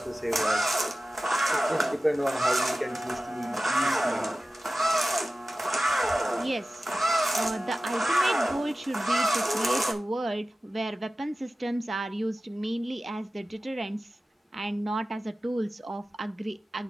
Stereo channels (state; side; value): normal; both; correlation 0.95